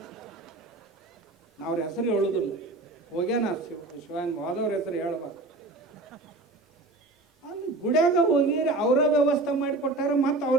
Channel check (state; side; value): quieter; left; 3.0 dB